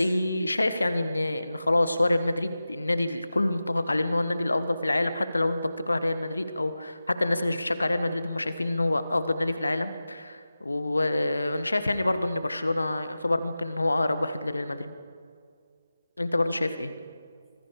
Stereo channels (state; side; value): inverted; both; correlation -0.94